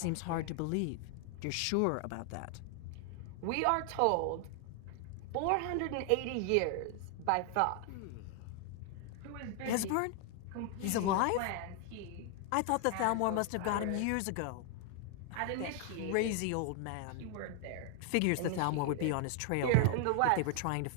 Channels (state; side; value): different; both; correlation 0.00